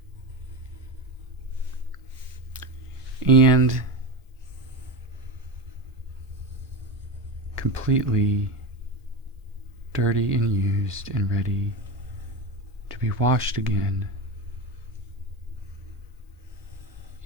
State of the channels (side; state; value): both; normal; correlation 0.20